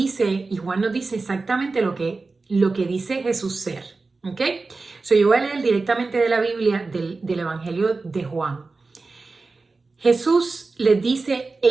y Juan nos dice exactamente lo que dice Jesús ser. ¿Ok? Yo voy a leer directamente de la Biblia, del Evangelio de Juan. Jesús les dice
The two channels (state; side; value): quieter; left; 3.8 dB